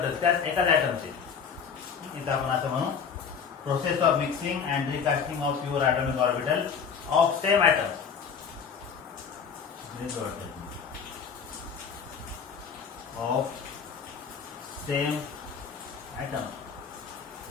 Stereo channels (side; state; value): right; quieter; 6.5 dB